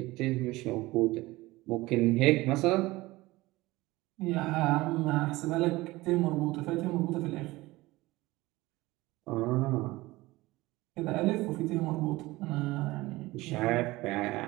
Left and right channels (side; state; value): left; quieter; 19.8 dB